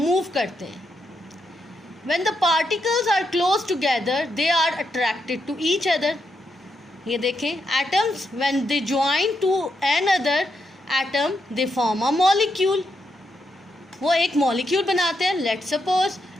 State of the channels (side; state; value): both; normal; correlation 0.82